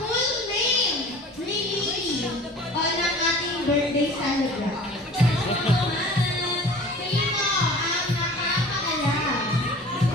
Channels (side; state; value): both; normal; correlation 0.43